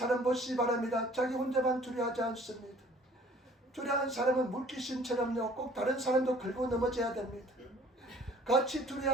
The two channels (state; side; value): normal; both; correlation 0.53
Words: 보시기 바랍니다. 자기 혼자만 두려워하지 않습니다. 두려워하는 사람은 물귀신처럼요 꼭 다른 사람도 긁고 넘어져야 됩니다. 같이